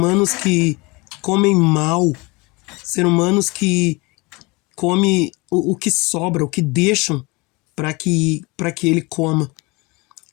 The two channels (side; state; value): right; quieter; 25.7 dB